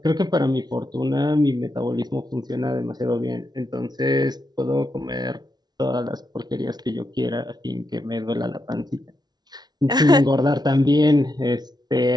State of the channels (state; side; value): late; left; 0.19 ms